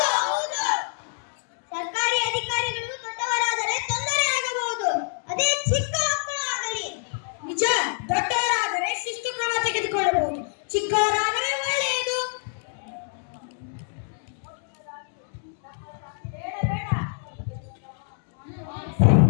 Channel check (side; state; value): right; silent; 61 dB below the other